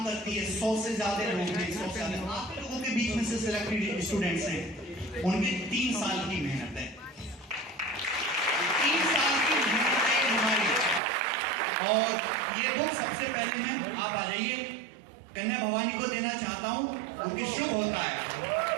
करती है, 100 से ज्यादा लोग हैं, 100 से ज्यादा आप लोगों के बीच में से सिलेक्टेड स्टूडेंट्स हैं, उनके 3 साल की मेहनत है, 3 साल की मेहनत है हमारी। और ये बुक सबसे पहले मैं, आप आ जाइए, कन्या भवानी को देना चाहता हूं क्योंकि शुभ होता है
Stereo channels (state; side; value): drops out; left; at 11.0 s